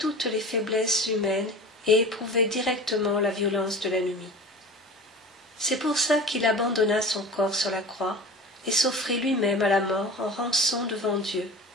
les faiblesses humaines et éprouvé directement la violence de l'ennemi. C'est pour ça qu'il abandonna son corps sur la croix et s'offrit lui-même à la mort en rançon devant Dieu,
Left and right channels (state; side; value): normal; both; correlation 0.36